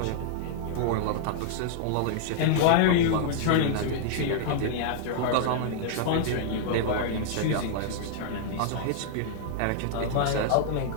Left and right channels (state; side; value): different; both; correlation -0.01